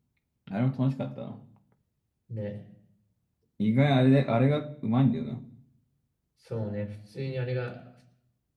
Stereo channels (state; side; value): identical; both; correlation 1.00